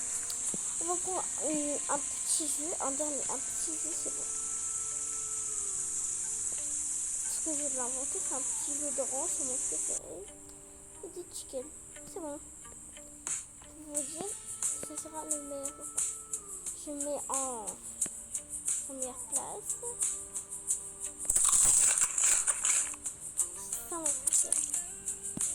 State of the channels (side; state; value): both; identical; correlation 1.00